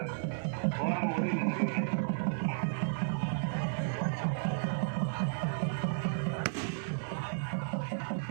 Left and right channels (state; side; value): silent; left; 56 dB below the other